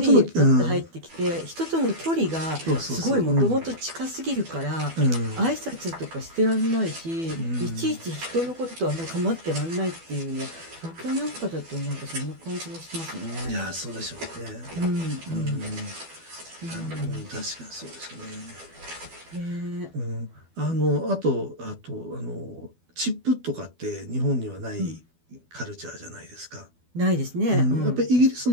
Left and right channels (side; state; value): left; late; 12 ms